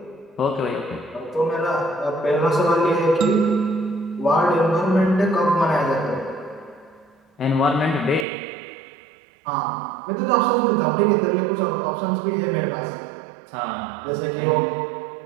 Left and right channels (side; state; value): left; drops out; at 8.2 s